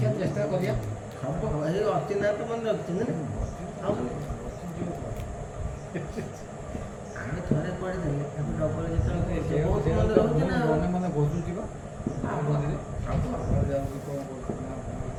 ଚେଷ୍ଟା କରିବା। ହବ। ଏଇ ଅର୍ଚି ନାଁ ତ ମନେ ରଖିଛନ୍ତି ନା। ଆମେ ଥରେ ପଢ଼ିଦେଲେ ତାକୁ ଡବଲ ଯେତେବେଳେ ବହୁତ ମନେ ରହୁଛି ନା। ମନେ ମନେ ଘୋଷୁଛି ବା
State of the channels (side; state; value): both; identical; correlation 1.00